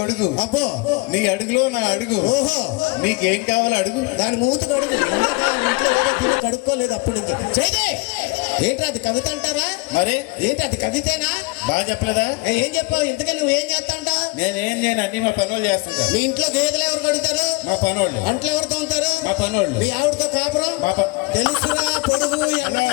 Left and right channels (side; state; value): right; quieter; 26.1 dB